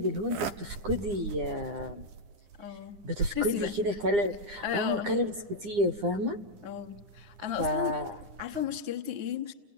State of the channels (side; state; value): left; late; 9.8 ms